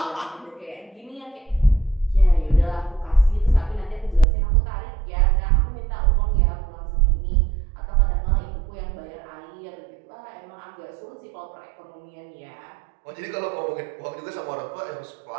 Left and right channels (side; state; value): left; drops out; at 4.2 s